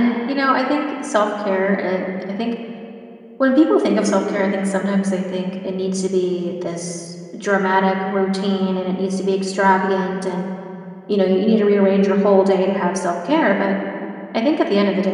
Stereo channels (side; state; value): both; identical; correlation 1.00